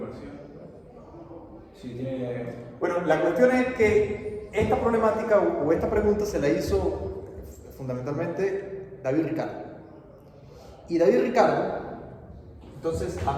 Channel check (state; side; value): identical; both; correlation 1.00